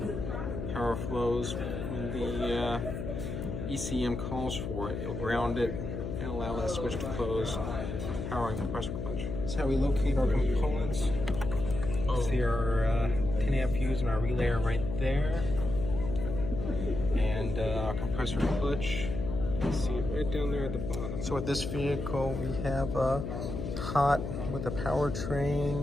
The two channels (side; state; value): left; noise; hum, 5 dB below the sound